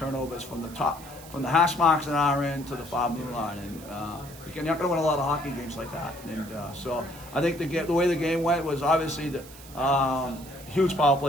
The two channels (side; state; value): right; noise; hiss, 18 dB below the sound